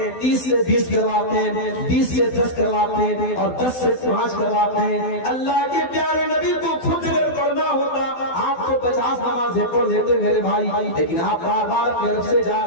30 سے 20 کرواتے ہیں، 20 سے 10 کرواتے ہیں اور 10 سے 5 کرواتے ہیں. اللہ کے پیارے نبی کو خود اگر کرنا ہوتا آپ کو 50 نمازیں پڑھ لیتے میرے بھائی، لیکن آپ بار بار اپنے رب سے جا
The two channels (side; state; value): right; late; 12 ms